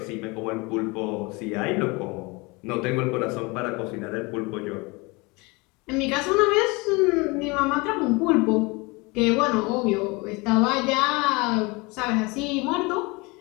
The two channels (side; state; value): right; quieter; 26.1 dB